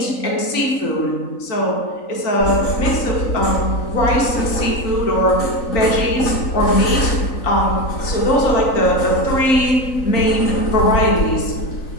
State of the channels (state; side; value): late; right; 3.9 ms